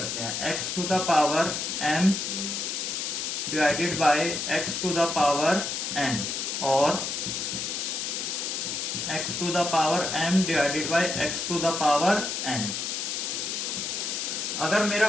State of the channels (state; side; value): noise; left; hiss, 2 dB below the sound